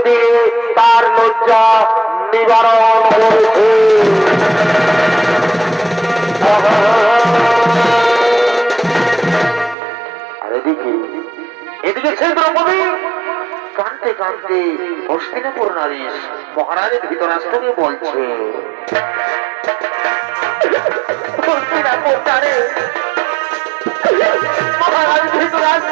দিয়ে তার লজ্জা নিবারণ করেছে। আর এদিকে সেই দ্রৌপদী কাঁদতে কাঁদতে হস্তিনাপুর নারী মহারাজের ধৃতরাষ্ট্রকে বলছে, মহারাজ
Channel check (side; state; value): left; drops out; at 9.8 s